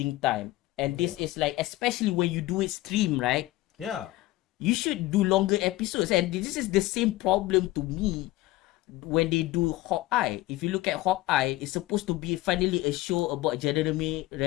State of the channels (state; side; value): quieter; right; 17.7 dB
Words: time. And this is like, especially when you do it stream, right? Yeah. You should do longer episodes. And this is the same problem to me when they do Hawkeye. If you look at Hawkeye, it's supposed to be finally a show about Jeremy